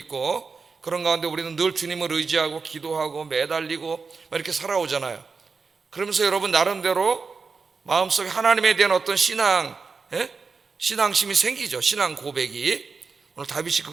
그런 가운데 우리는 늘 주님을 의지하고 기도하고 매달리고 이렇게 살아오잖아요. 그러면서 여러분 나름대로 마음속에 하나님에 대한 어떤 신앙심이 생기죠. 신앙 고백이. 오늘 다윗이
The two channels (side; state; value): left; quieter; 4.8 dB